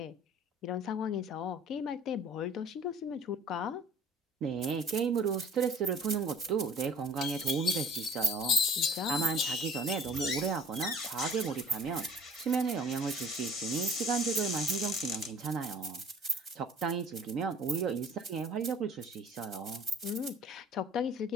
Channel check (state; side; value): normal; both; correlation 0.49